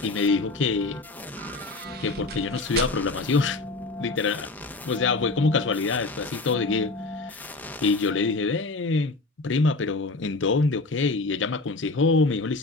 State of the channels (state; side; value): quieter; right; 3.3 dB